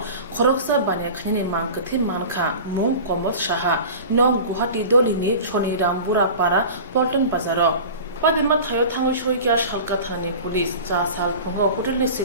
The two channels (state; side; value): inverted; both; correlation -0.36